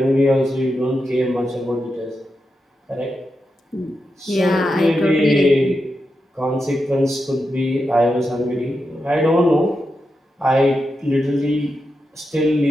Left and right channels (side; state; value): both; normal; correlation 0.88